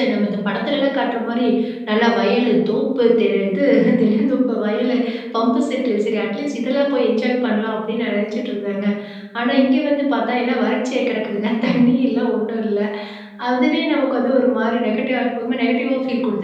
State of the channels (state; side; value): identical; both; correlation 1.00